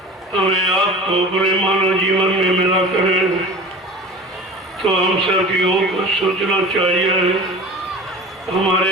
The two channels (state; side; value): normal; both; correlation 0.37